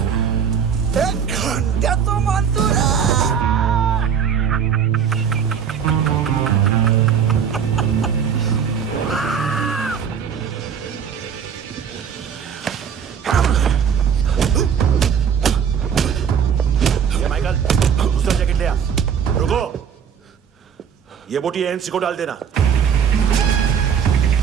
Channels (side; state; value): left; quieter; 7.5 dB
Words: घंटे तो मानतू माइकल, दूसरा जैकेट ले आ। रुको, ये बोटी एएनसी को डाल देना।